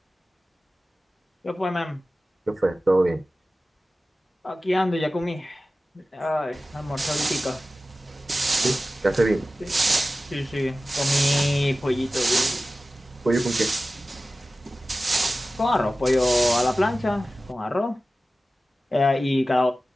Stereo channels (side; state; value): both; normal; correlation 0.96